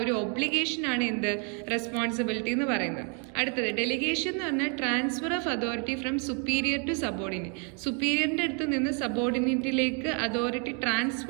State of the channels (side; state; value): left; quieter; 38.4 dB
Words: ഒരു ഒബ്ലിഗേഷൻ ആണ് എന്ത്, റെസ്പോൺസിബിലിറ്റി എന്ന് പറയുന്നത്. അടുത്തത് ഡെലിഗേഷൻ എന്ന് പറഞ്ഞാൽ transfer of authority from superior to subordinate. സുപ്പീരിയറിന്റെ അടുത്ത് നിന്ന് സബോർഡിനേറ്റിലേക്ക് അതോറിറ്റി